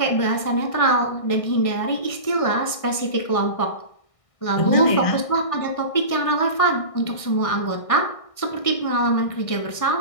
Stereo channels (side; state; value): right; late; 1.6 ms